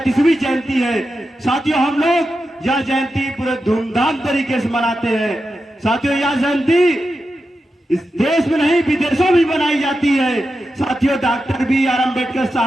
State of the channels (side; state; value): both; normal; correlation 0.90